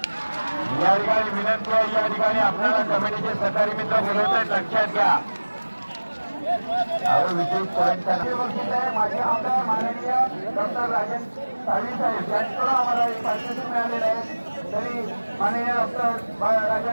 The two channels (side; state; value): both; inverted; correlation -1.00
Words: या ठिकाणी विनंती आहे. या ठिकाणी आपल्याला कमिटीचे सहकारी मित्र बोलवत आहेत, लक्षात घ्या. विशेष पॉईंट माझे आमदार माननीय डॉक्टर राजन साळवी साहेब यांच्याकडून आम्हाला एक पारितोषिक मिळालेलं आहे. तरी माननीय डॉक्टर